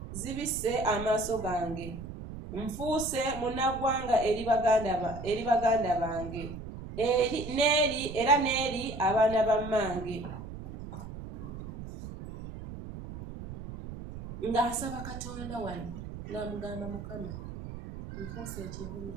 zibisse amaaso gange, nfuuse munnaggwanga eri baganda bange, era n'eri abaana ba mmange. ng'asaba Katonda wano ng'amugamba Mukama nfuuse ekivumi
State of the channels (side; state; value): right; noise; rumble, 10 dB below the sound